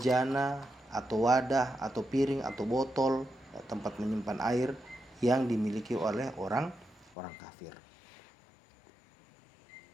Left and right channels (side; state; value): right; drops out; at 7.2 s